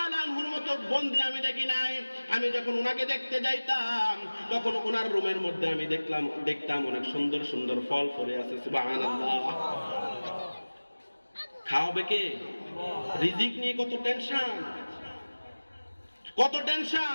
আনহুর মতো বন্দী আমি দেখি নাই। আমি যখন ওনাকে দেখতে যাইতাম তখন ওনার রুমের মধ্যে আমি দেখতাম অনেক সুন্দর সুন্দর ফল পড়ে আছে। সুবহানাল্লাহ। খাওয়াবে কে? রিজিক নিয়ে কত টেনশন, কত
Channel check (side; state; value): both; inverted; correlation -1.00